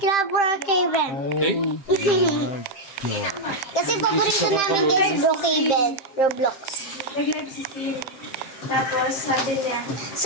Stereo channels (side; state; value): right; late; 7.6 ms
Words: Brookhaven. Okay? Kasi paborito namin guys, Brookhaven, Roblox. Nag-live si Siri. Tapos sabi niya,